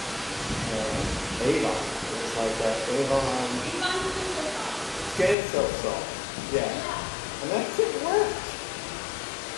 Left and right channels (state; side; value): drops out; right; at 5.4 s